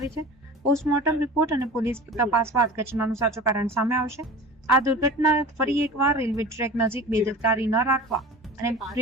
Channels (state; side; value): normal; both; correlation 0.37